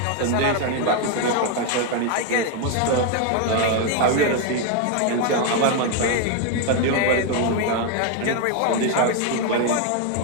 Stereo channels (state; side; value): different; both; correlation 0.01